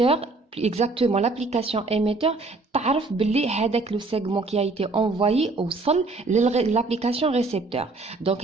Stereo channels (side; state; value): left; quieter; 3.4 dB